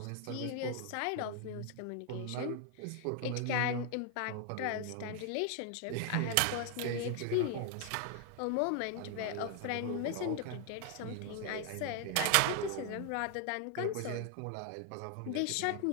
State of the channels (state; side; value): different; both; correlation 0.00